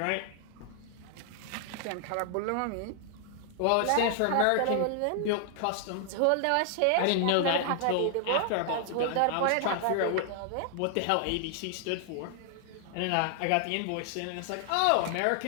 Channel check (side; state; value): both; different; correlation 0.00